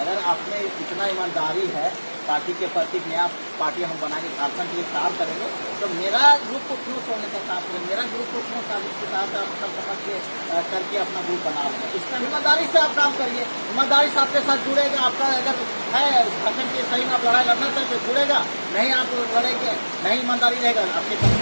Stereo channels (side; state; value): both; inverted; correlation -1.00